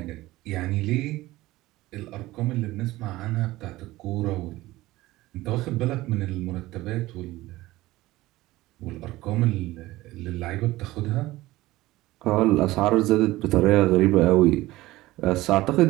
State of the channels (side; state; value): left; quieter; 17.9 dB